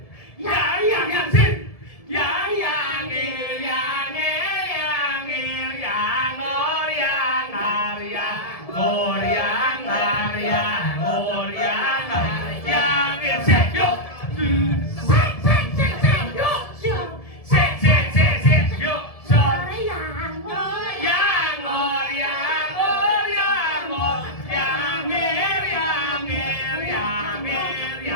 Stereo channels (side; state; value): right; late; 1.7 ms